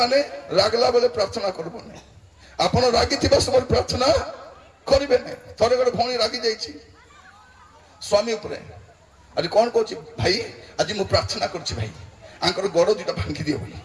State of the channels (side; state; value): both; identical; correlation 1.00